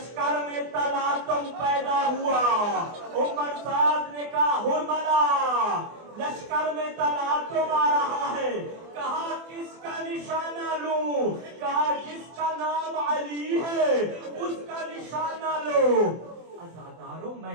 میں تلاطم پیدا ہوا، عمر سعد نے کہا حرملہ لشکر میں تلاطم آ رہا ہے، کہا کس کا نشانہ لوں؟ کہا جس کا نام علی ہے اس کا نشانہ لو۔ عزادارو میں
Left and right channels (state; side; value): late; left; 24 ms